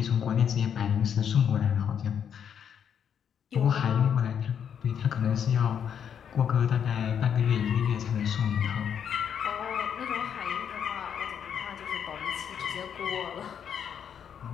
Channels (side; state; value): right; quieter; 8.2 dB